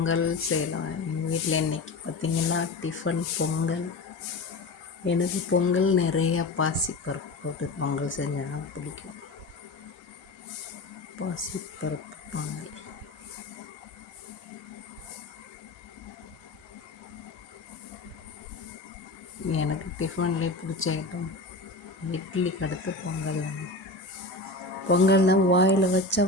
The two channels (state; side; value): quieter; right; 3.1 dB